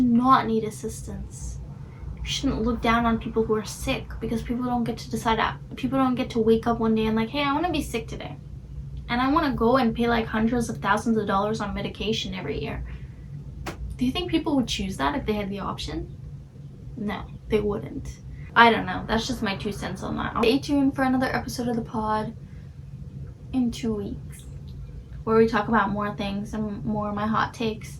not need assistance. You shouldn't look down on people who are sick, because people don't get to decide that. People don't get to wake up one day and like, hey, I want to be sick today, and I want to go and pay like hundreds of thousands of dollars on medication every year. Do you think people would choose that if they had the option? No, they wouldn't. I don't know. That's just my 2 cents on that. Stay tuned for another episode of the pod in 2 weeks, where we talk about more things and more of my hot takes,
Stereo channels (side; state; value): both; identical; correlation 1.00